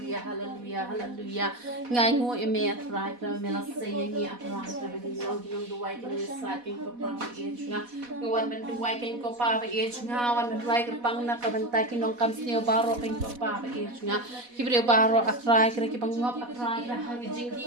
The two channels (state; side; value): late; left; 4.1 ms